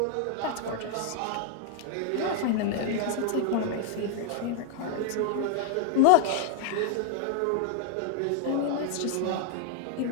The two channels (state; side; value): different; both; correlation 0.00